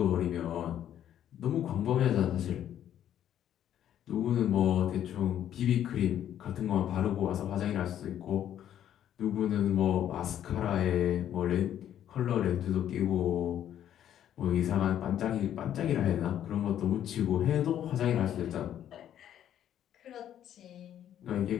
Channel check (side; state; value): right; quieter; 10.7 dB